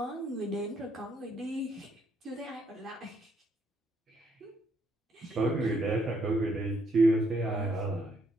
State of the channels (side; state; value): both; normal; correlation 0.72